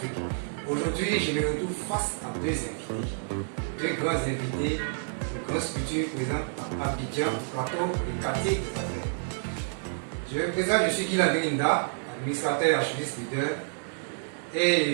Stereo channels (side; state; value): left; silent; digital silence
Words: Aujourd'hui, je me retrouve face à deux invités, deux grands invités, de grosses structures présentes à Abidjan, Plateau et quartier des Affaires. Je me présente, je suis Guy Landrinda, administrateur archiviste leader,